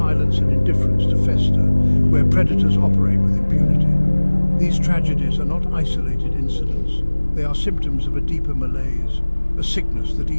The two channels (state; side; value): inverted; both; correlation -1.00